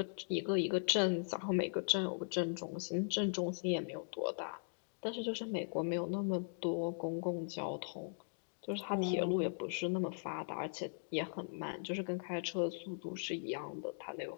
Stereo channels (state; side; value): silent; right; digital silence